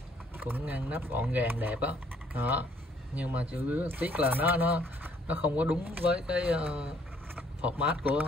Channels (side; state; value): both; normal; correlation 0.63